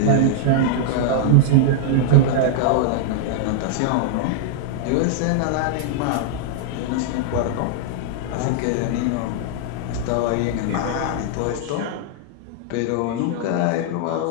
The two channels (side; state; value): both; different; correlation -0.01